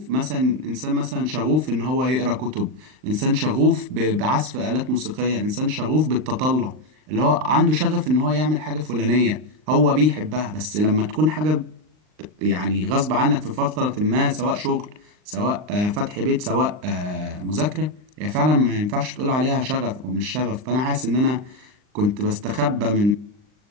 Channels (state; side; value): late; left; 39 ms